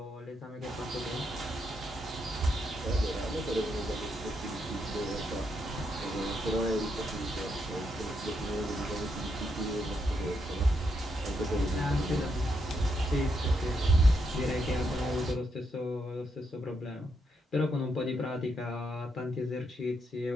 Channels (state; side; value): normal; both; correlation 0.80